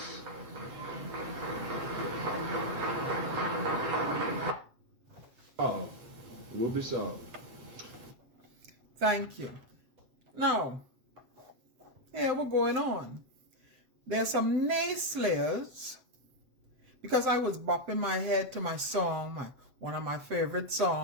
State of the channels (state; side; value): late; left; 7.8 ms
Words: this song. Thank you. Now, here we're going on. There's some naysayers, because I was bopping my head to my song, one of my favorite